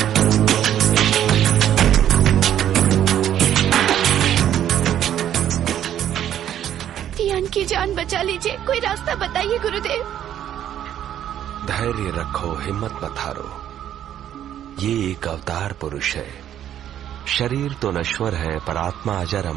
की जान बचा लीजिए, कोई रास्ता बताइए गुरुदेव। धैर्य रखो, हिम्मत मत हारो। ये एक अवतार पुरुष है। शरीर तो नश्वर है पर आत्मा अजर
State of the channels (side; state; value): left; quieter; 10.8 dB